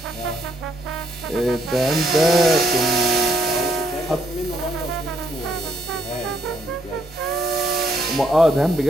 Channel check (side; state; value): both; normal; correlation 0.72